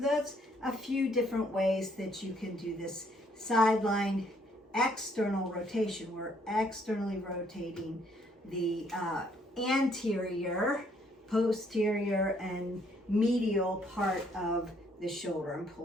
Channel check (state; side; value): normal; both; correlation 0.67